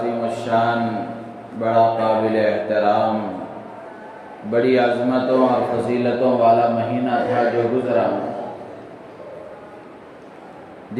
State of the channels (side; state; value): both; identical; correlation 1.00